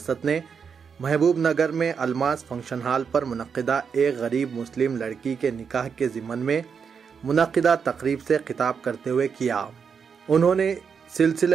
ने महबूब नगर में अलमास फंक्शन हॉल पर मुनक्किदा एक गरीब मुस्लिम लड़की के निकाह के ज़िमन में मुनक्किदा तकरीब से खिताब करते हुए किया। उन्होंने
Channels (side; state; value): left; quieter; 6.4 dB